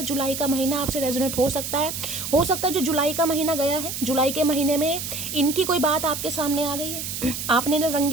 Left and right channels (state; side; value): noise; right; hiss, 5 dB below the sound